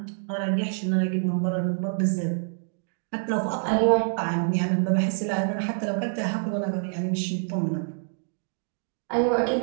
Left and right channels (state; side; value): silent; left; digital silence